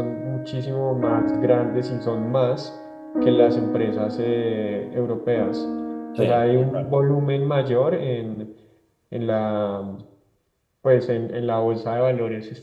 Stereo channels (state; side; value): identical; both; correlation 1.00